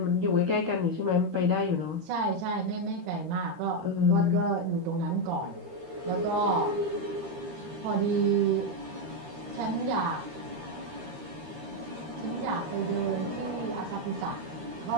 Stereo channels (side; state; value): left; late; 13 ms